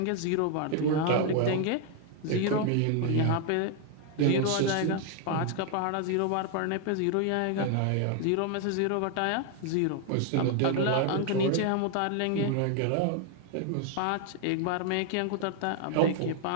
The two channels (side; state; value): both; different; correlation 0.01